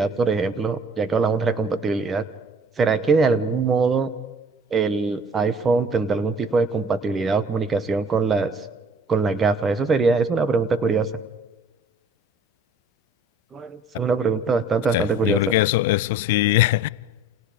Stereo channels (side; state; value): both; normal; correlation 0.49